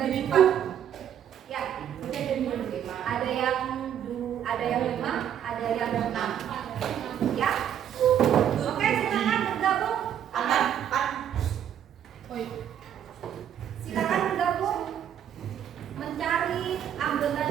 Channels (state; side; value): quieter; left; 9.7 dB